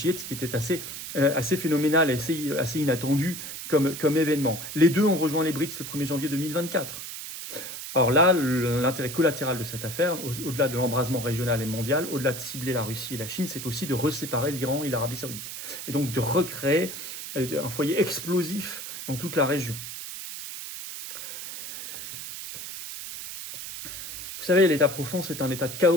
ce qui était assez phénoménal, assez inattendu comme événement. Les deux ont rejoint les BRICS le 1er janvier 2024. Alors là, l'intérêt collatéral de cette affaire, au-delà de l'embrasement régional et mondial, au-delà de cibler la Russie et la Chine, c'est aussi de reséparer l'Iran et l'Arabie Saoudite. Et donc de recréer un foyer explosif dans toute la région. Vous savez, l'état profond, c'est un état de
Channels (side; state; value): right; noise; hiss, 8 dB below the sound